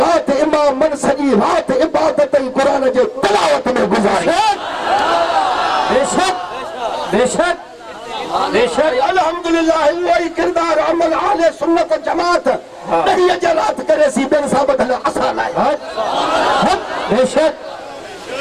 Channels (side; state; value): both; identical; correlation 1.00